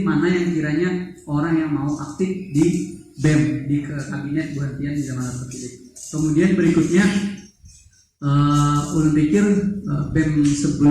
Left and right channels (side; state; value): both; identical; correlation 1.00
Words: mana yang kiranya orang yang mau aktif di BEM di kabinet Buan Bian di zaman terpilih. Kemudian berikutnya ulun pikir BEM